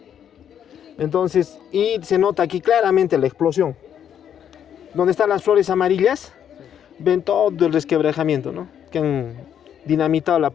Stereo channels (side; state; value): right; quieter; 9.2 dB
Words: Entonces, y se nota aquí claramente la explosión. Donde están las flores amarillas, ven todo el resquebrajamiento, ¿no? Que han dinamitado la